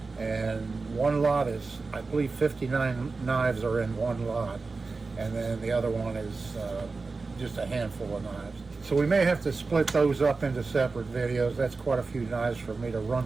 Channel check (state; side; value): quieter; left; 4.0 dB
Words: And one lot is, I believe 59 knives are in one lot, and then the other one is just a handful of knives. So we may have to split those up into separate videos. That's quite a few knives for me to run